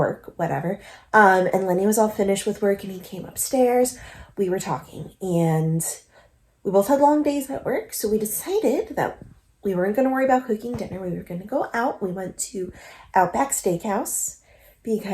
whatever, and Lenny was all finished with work and he came upstairs, we were talking and we both had long days at work. So we decided that we weren't going to worry about cooking dinner. We were going to go out. We went to Outback Steakhouse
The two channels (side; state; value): both; identical; correlation 1.00